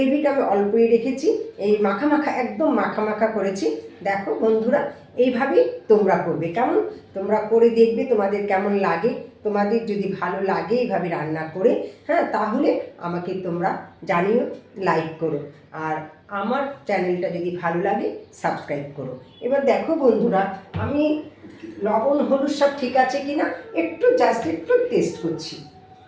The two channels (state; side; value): identical; both; correlation 1.00